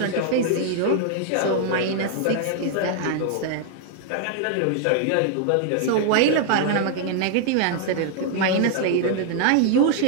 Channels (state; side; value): different; both; correlation 0.00